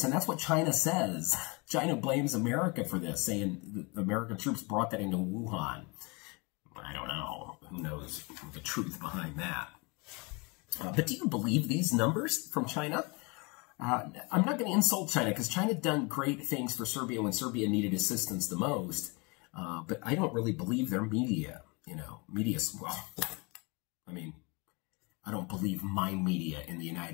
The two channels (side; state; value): right; quieter; 28.9 dB